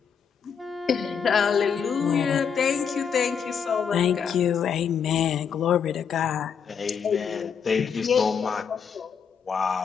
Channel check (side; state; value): right; quieter; 7.0 dB